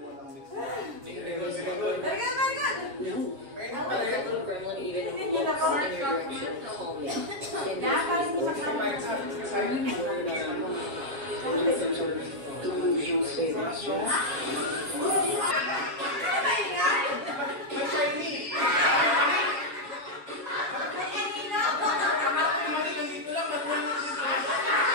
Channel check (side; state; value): left; late; 7.3 ms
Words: walang mix. Hindi ka nagawin sila good. Very good, very good! Hindi na po. Yeah, parang hindi